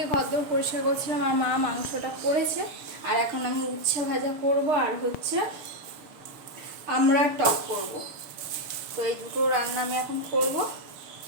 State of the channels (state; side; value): late; left; 6.7 ms